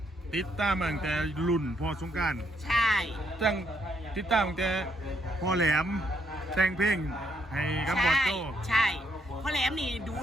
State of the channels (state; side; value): normal; both; correlation 0.74